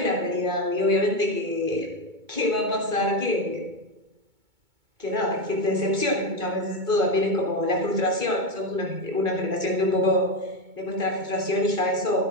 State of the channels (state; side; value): late; left; 2.2 ms